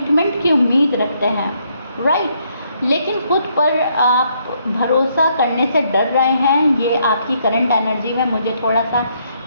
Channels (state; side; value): inverted; both; correlation -0.72